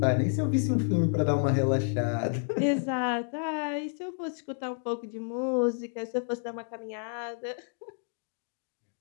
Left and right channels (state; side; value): silent; right; digital silence